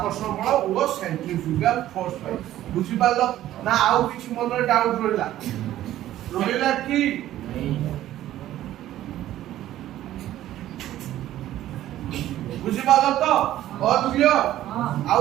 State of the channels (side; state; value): left; quieter; 13.4 dB